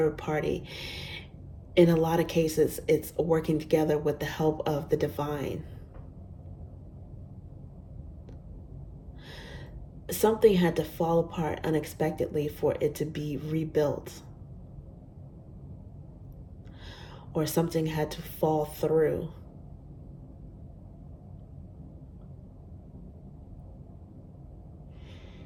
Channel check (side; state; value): both; identical; correlation 1.00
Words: party. In a lot of cases, it's working together with the help of the divine. Something had to fall apart unexpectedly for it to be rebuilt. Or something had to fall through.